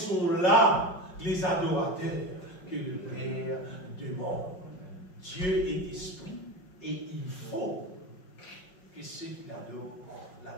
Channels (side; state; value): right; late; 5.5 ms